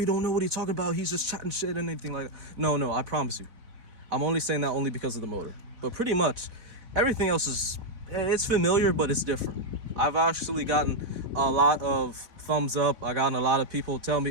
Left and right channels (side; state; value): left; late; 4.0 ms